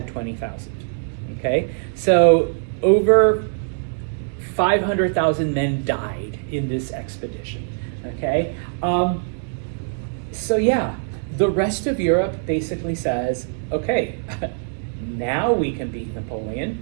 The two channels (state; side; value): silent; left; digital silence